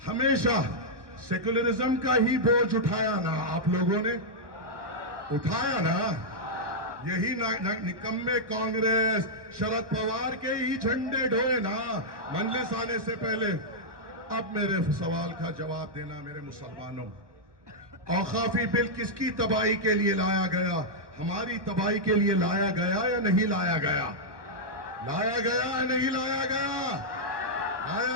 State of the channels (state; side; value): late; left; 1.0 ms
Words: हमेशा सेकुलरिज्म का ही बोझ उठाया ना आप लोगों ने, उठाया ना। यही निकम्मे कांग्रेस शरद पवार के ही झंडे ढोए ना मजलिस आने से पहले। अब मेरे सवाल का जवाब देना मेरे मुसलमानों, औकाफी बिल किसकी तबाही के लिए लाया गया? हमारी तबाही के लिए लाया गया या नहीं लाया गया? लाया गया या नहीं लाया गया?